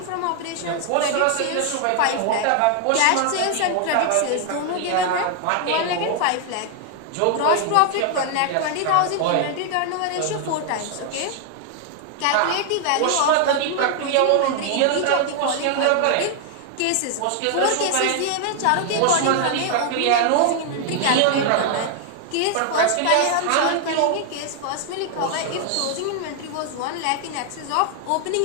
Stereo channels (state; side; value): different; both; correlation 0.00